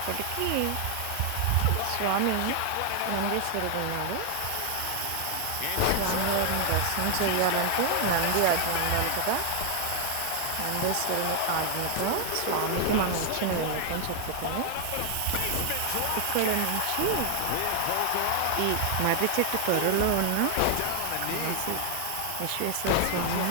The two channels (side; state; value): both; different; correlation 0.00